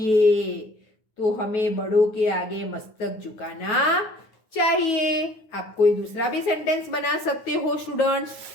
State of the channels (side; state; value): right; late; 9.5 ms